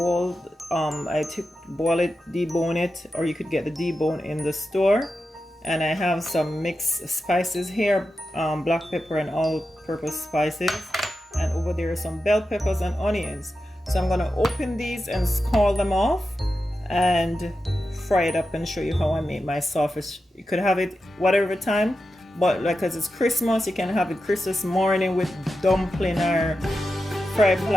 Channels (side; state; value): both; normal; correlation 0.90